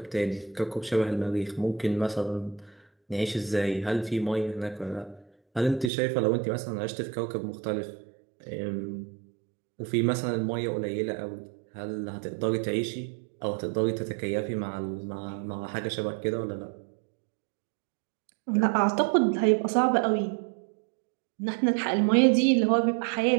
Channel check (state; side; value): drops out; left; at 5.9 s